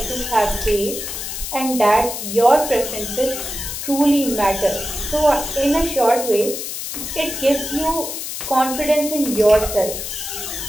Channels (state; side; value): noise; left; hiss, 6 dB below the sound